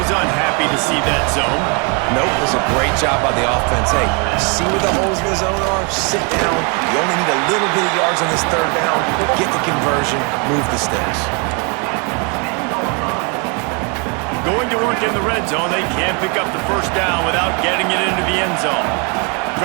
unhappy to see that zone. Nope, it was a great job by the offense. Hey, see where the holes in the zone are? Sit down. You only need a little bit of yards on this 3rd down. Get the conversion, move the sticks. Going to work in the red zone, they can't pick up the 1st down without getting it into the end zone.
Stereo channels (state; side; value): quieter; left; 34.0 dB